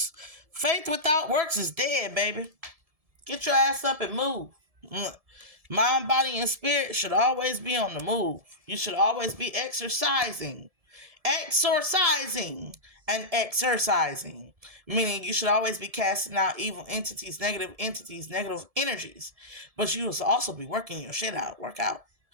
Faith without works is dead, baby. Get your ass up and move. Mind, body, and spirit should always be on the move. You should always be exercising, and exercising. Meaning you should always be casting out evil entities, negative energies. But you should also be working your shit out. Work out.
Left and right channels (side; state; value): left; late; 1.7 ms